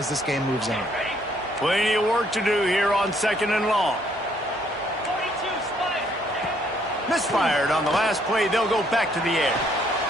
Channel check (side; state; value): both; normal; correlation 0.67